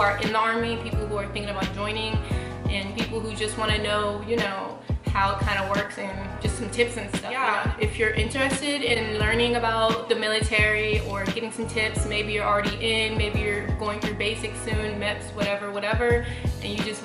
in the Army, people who are thinking about joining, and people who just want to know, you know, how it kind of works and just some tips and stuff. Yeah, if you're interested in learning about the military or getting some tips, maybe you're already in, maybe you're going through basics soon, MEPS, whatever, and you just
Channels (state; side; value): identical; both; correlation 1.00